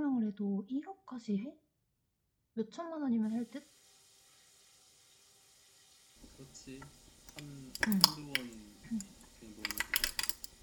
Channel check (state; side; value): identical; both; correlation 1.00